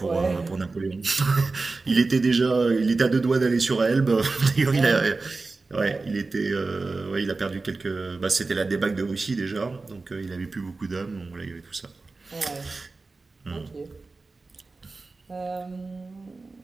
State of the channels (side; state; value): left; quieter; 3.7 dB